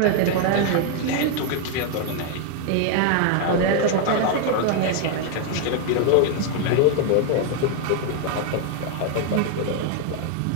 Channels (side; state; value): both; different; correlation 0.00